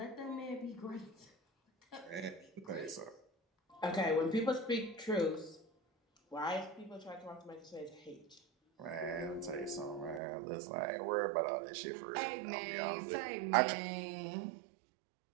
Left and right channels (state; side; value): drops out; left; at 10.2 s